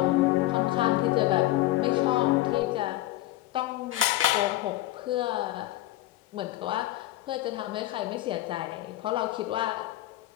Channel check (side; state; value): right; quieter; 16.0 dB